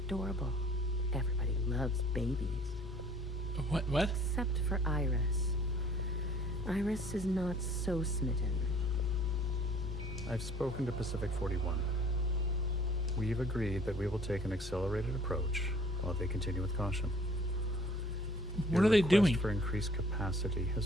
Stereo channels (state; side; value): normal; both; correlation 0.54